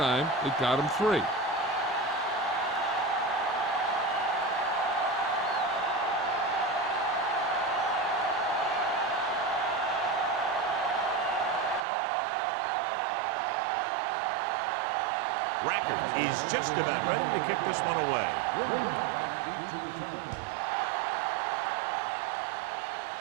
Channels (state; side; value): drops out; left; at 11.8 s